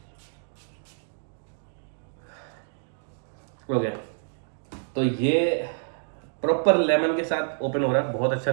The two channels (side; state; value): left; silent; digital silence